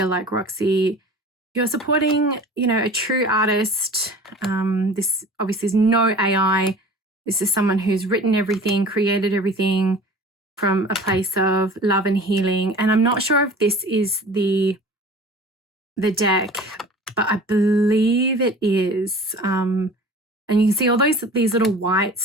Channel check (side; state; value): both; normal; correlation 0.42